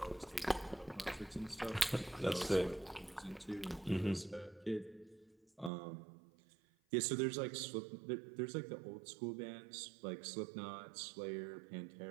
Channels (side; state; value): left; drops out; at 5.7 s